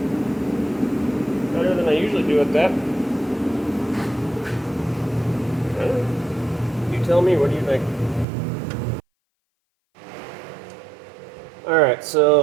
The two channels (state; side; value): drops out; left; at 8.2 s